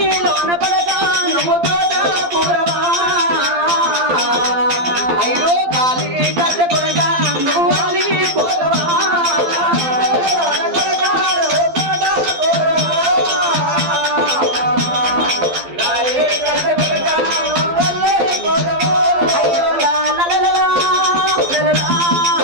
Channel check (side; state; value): left; late; 12 ms